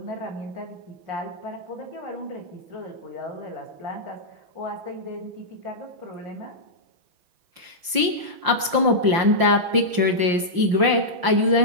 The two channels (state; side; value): late; left; 5.7 ms